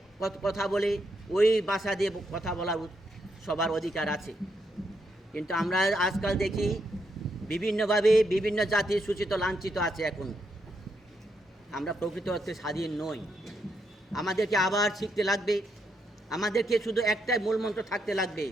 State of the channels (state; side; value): normal; both; correlation 0.79